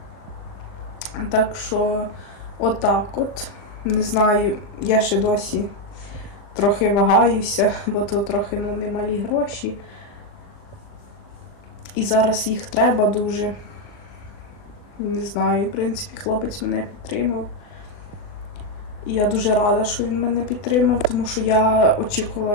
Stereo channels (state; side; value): late; right; 39 ms